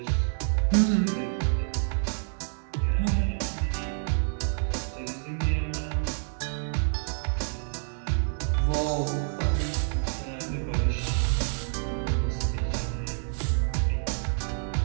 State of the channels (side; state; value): left; silent; digital silence